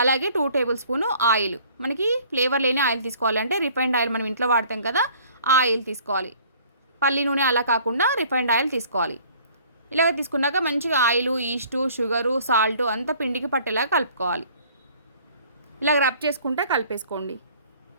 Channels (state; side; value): inverted; both; correlation -0.55